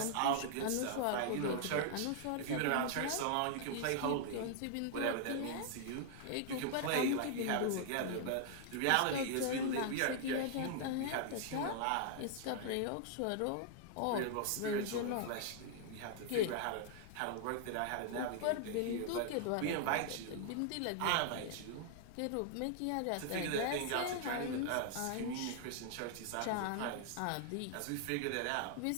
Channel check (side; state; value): both; different; correlation 0.00